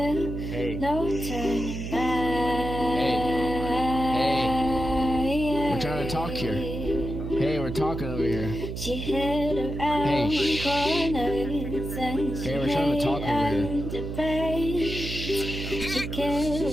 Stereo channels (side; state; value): right; noise; hum, 6 dB below the sound